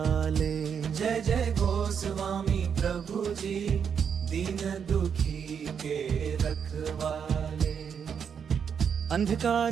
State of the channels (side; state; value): left; quieter; 7.3 dB